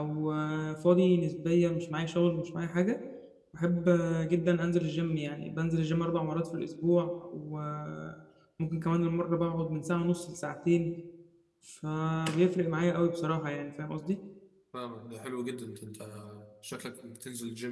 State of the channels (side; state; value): both; identical; correlation 1.00